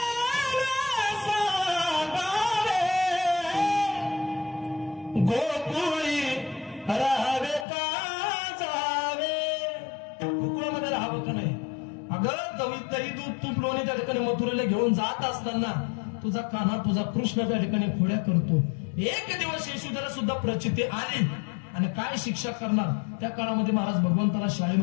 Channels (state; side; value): drops out; right; at 7.7 s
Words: मथुरेला घेऊन जात असताना तुझा कान्हा तुझा कृष्ण त्या ठिकाणी खोड्या करतो. एक दिवस यशोदेला सुद्धा प्रचिती आली आणि काय शिक्षा करणार. त्या काळामध्ये महाराज भगवंताला